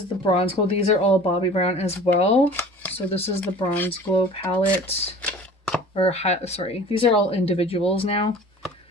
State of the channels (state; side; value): normal; both; correlation 0.44